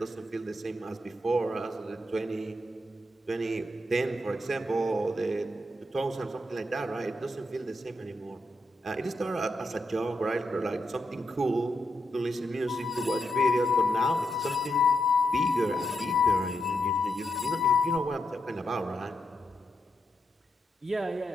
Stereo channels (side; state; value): both; normal; correlation 0.83